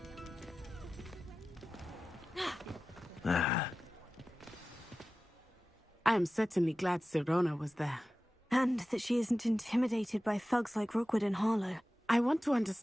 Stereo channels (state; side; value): normal; both; correlation 0.95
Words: I am certainly glad Sirona was there. And that she isn't intimidated by thugs like Rookwood and Harlow. I want to